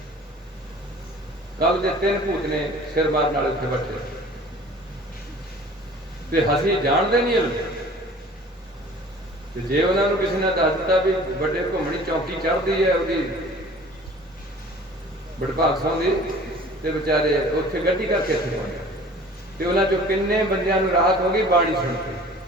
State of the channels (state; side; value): normal; both; correlation 0.47